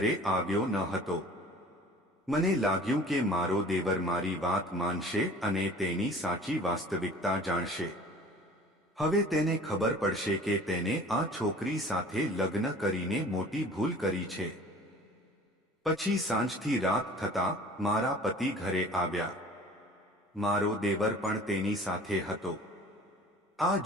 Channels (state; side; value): normal; both; correlation 0.46